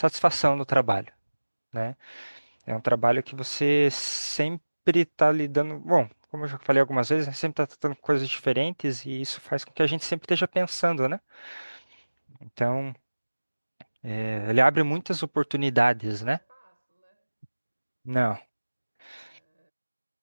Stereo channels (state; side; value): inverted; both; correlation -1.00